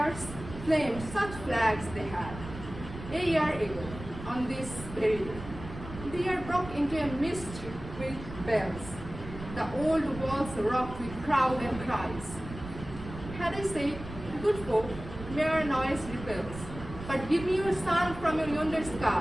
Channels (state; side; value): noise; right; rumble, 12 dB below the sound